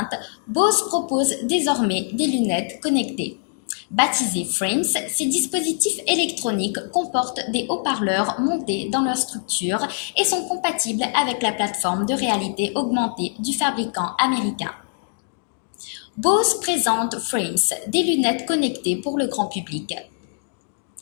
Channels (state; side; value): silent; right; 63 dB below the other